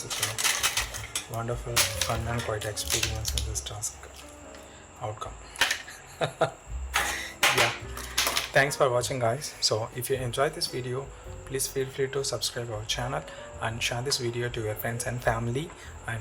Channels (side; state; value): both; identical; correlation 1.00